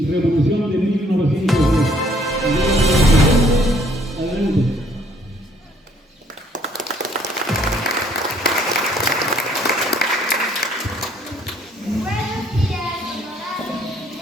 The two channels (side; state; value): both; normal; correlation 0.63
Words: de 1910. Adelante.